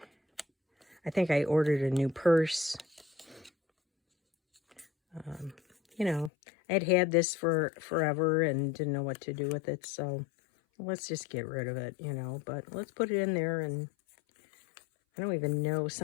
I think I ordered a new purse. You know, I'd had this for forever and didn't know what to do with it, so let's just get rid of it, you know. But let's put it in there, and I don't even know.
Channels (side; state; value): right; drops out; at 6.3 s